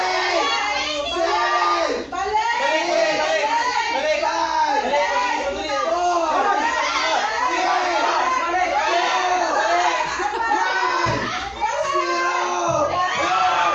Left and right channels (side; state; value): both; identical; correlation 1.00